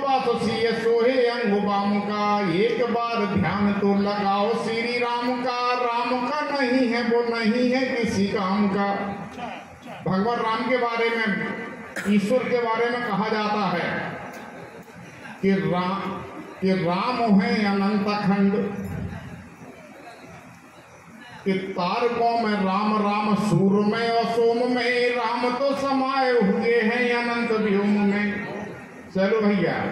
सीय सोहे अंगुबाम का। एक बार ध्यान तो लगाओ श्री राम का, राम का नहीं है वो नहीं है किसी काम का। भगवान राम के बारे में, ईश्वर के बारे में कहा जाता है कि राम है अनंत खंड। कि तारकों में राम राम, सूर्य में और सोम में, राम तो समाये हुए हैं अनंत व्योम में। चलो भैया।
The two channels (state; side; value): identical; both; correlation 1.00